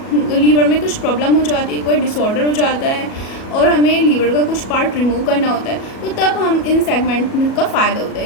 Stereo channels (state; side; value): late; right; 37 ms